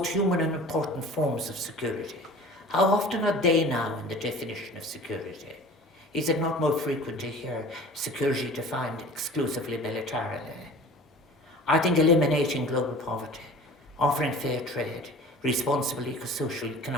human and important forms of security, how often are they now in the definition of security? Is it not more frequent to hear security defined exclusively militarily? I think eliminating global poverty, offering fair trade, responsible eco-social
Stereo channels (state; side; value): normal; both; correlation 0.43